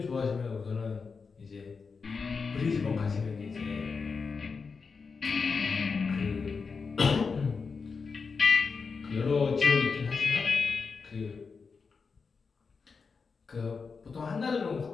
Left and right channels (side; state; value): right; quieter; 5.1 dB